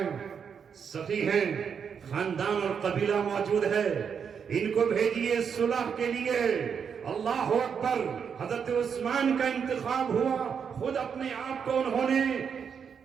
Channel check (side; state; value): left; quieter; 6.9 dB